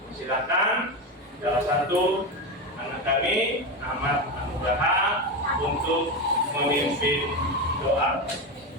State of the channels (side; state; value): both; normal; correlation 0.16